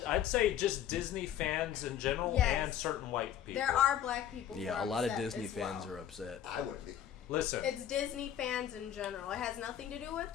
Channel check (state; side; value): quieter; right; 10.2 dB